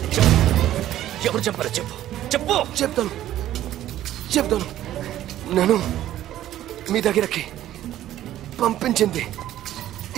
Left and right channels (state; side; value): quieter; left; 13.0 dB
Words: ఎవరు చంపారో చెప్పు, చెప్పు. చెప్తాను. నన్ను మీ దగ్గరకి పంపించింది